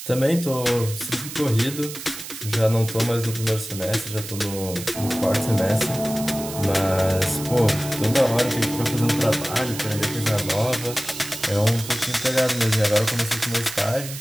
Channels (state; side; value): noise; right; hiss, 10 dB below the sound